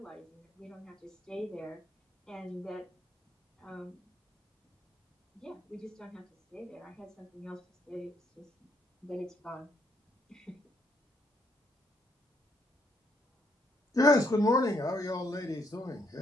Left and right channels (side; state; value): both; normal; correlation 0.72